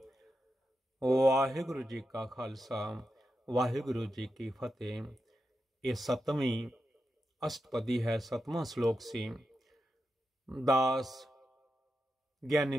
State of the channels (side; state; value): both; normal; correlation 0.88